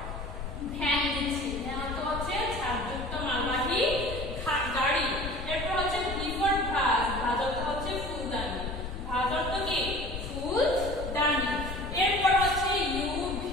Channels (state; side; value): noise; left; rumble, 7 dB below the sound